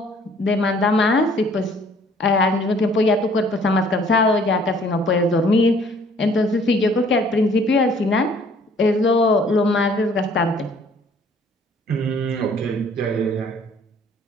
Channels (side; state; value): both; normal; correlation 0.58